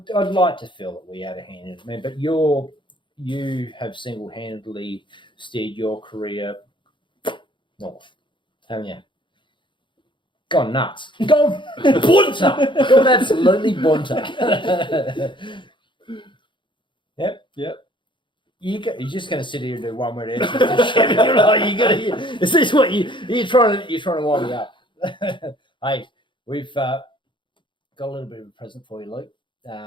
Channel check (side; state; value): right; late; 0.23 ms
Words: like to feel that we had a hand in it, man. But you have single-handedly steered your career north, haven't you? Gone nuts. Gone bunter. Gone absolutely bunter. Yep. You're just going to sit here and do one word answers. You're like, is this what you're trying to wind me up? Hey, we've got a little bit of a present for you, Luke.